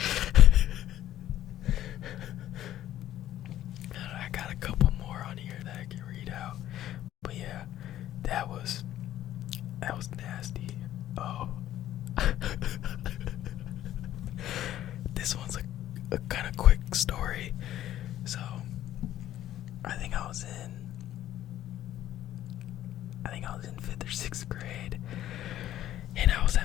I got a couple more on here that I can read out. But yeah, that was nasty. Oh. This one's a kind of quick story. So, I think I was in 5th or 6th grade, and I was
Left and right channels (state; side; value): quieter; right; 12.7 dB